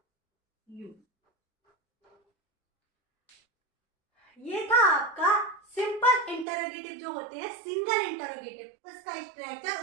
you. ये था आपका सिंपल इंटरोगेटिव जो होते हैं, सिंगल इंटरोगेटिव, उसका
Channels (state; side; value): drops out; left; at 6.5 s